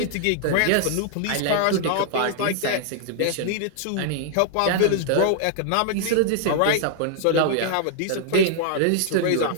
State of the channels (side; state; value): both; different; correlation -0.01